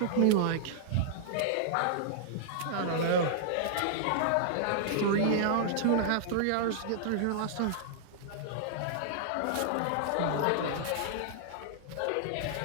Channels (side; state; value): both; different; correlation -0.01